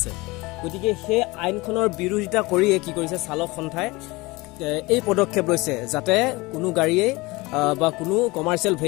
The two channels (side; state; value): right; quieter; 22.8 dB